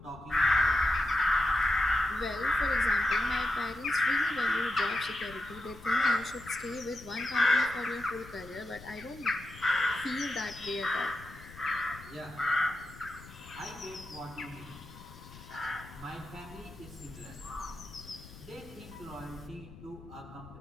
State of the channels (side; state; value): left; noise; rumble, 17 dB below the sound